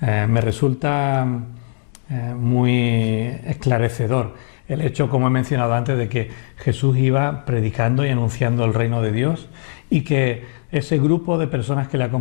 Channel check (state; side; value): silent; right; digital silence